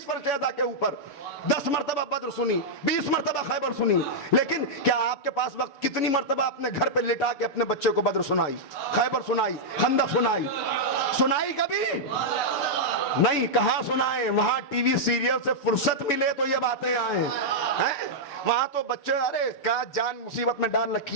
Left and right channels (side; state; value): right; late; 6.7 ms